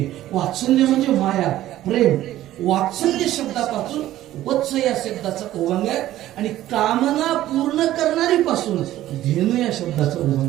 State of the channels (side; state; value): left; quieter; 14.0 dB